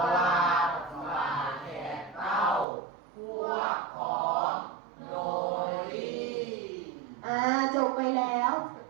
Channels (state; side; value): drops out; left; at 2.7 s